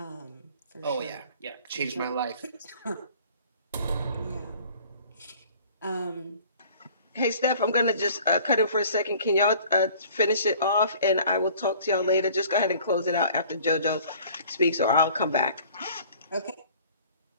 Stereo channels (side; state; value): both; inverted; correlation -0.50